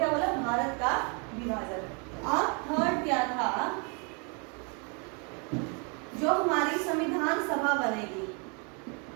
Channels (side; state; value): left; quieter; 35.4 dB